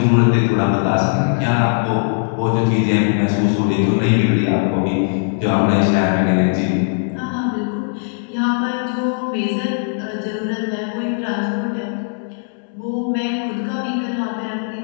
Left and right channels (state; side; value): silent; right; 67 dB below the other